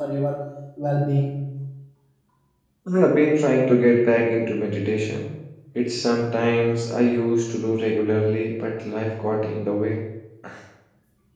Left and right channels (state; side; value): identical; both; correlation 1.00